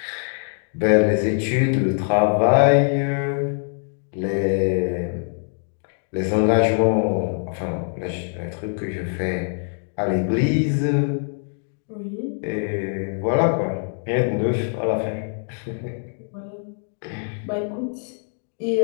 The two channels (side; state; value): right; silent; 61 dB below the other